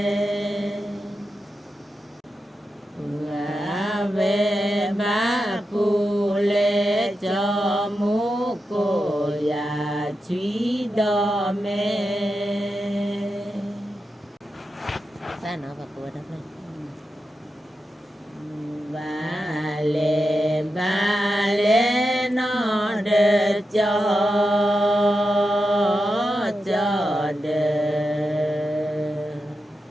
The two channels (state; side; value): normal; both; correlation 0.89